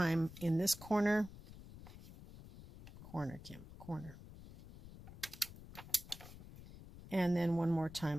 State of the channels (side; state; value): left; noise; rumble, 15 dB below the sound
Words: in this corner. Corner. And then one more